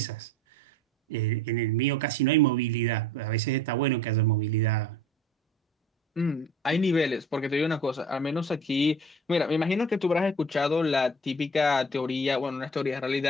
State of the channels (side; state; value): both; normal; correlation 0.46